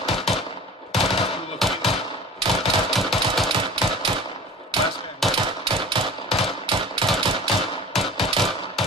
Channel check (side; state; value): both; normal; correlation 0.41